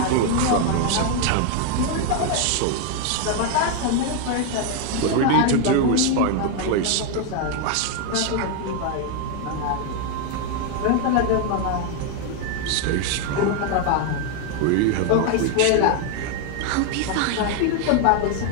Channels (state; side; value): different; both; correlation 0.01